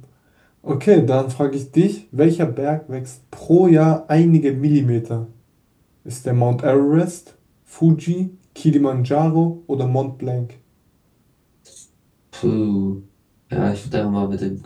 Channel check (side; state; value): both; identical; correlation 1.00